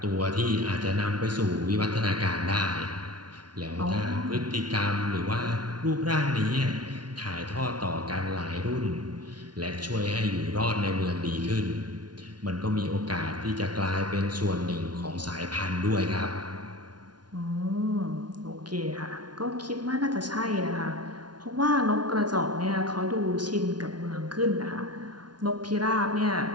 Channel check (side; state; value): left; late; 0.70 ms